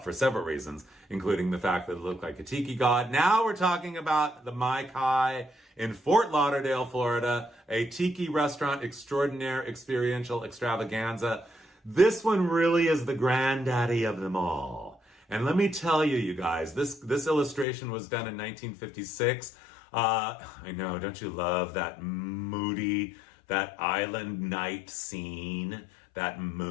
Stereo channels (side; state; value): right; drops out; at 17.7 s